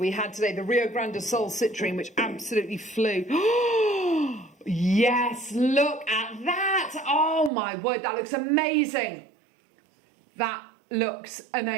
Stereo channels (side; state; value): left; drops out; at 7.5 s